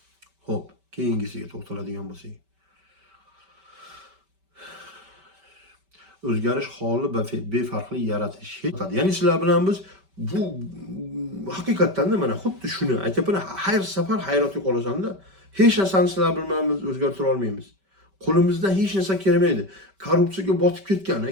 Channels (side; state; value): left; late; 5.2 ms